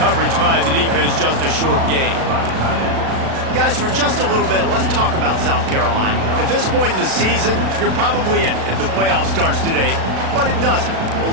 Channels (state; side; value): late; left; 36 ms